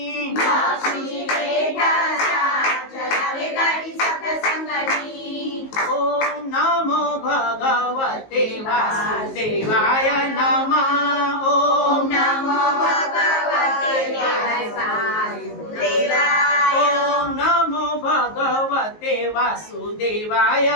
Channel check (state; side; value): late; right; 19 ms